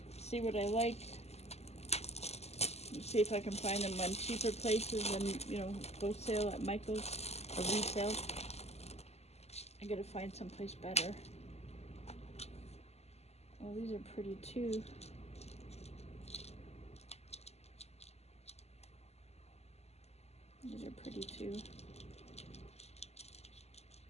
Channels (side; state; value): right; late; 0.30 ms